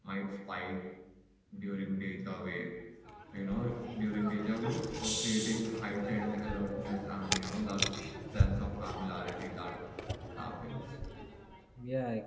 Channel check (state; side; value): identical; both; correlation 1.00